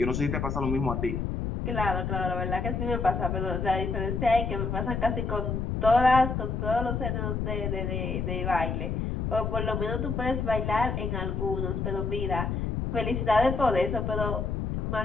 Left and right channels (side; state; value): left; noise; rumble, 1 dB below the sound